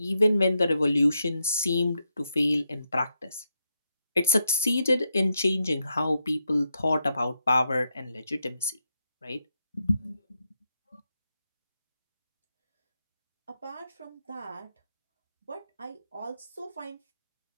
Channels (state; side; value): inverted; both; correlation -0.83